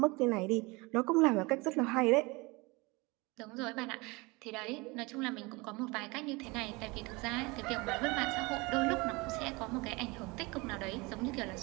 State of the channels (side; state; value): left; quieter; 25.3 dB